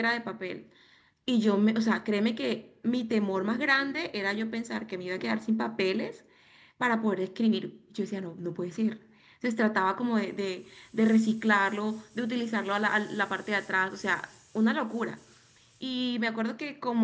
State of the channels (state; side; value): identical; both; correlation 1.00